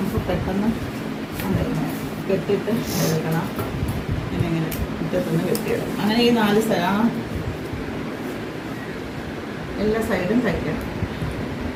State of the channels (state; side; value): identical; both; correlation 1.00